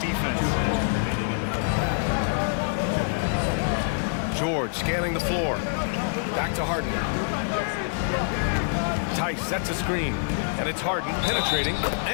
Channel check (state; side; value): silent; right; 60 dB below the other